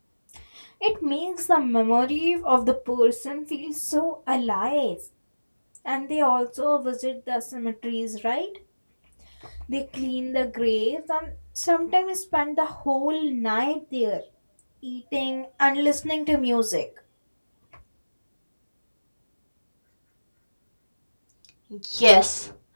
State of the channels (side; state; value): both; inverted; correlation -1.00